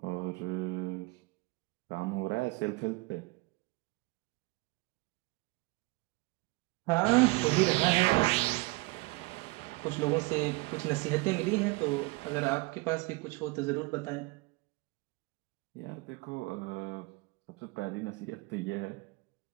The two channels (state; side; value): quieter; left; 24.5 dB